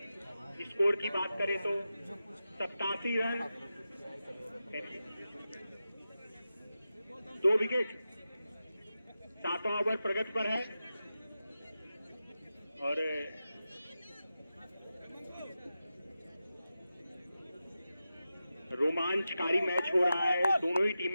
स्कोर की बात करें तो 87 रन, 2 विकेट, 7वां ओवर प्रगति पर है और रोमांचकारी मैच हो रहा है। दोनों ही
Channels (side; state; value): both; inverted; correlation -0.92